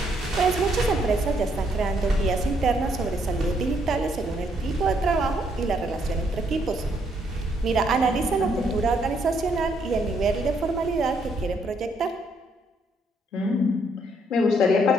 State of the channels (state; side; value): normal; both; correlation 0.72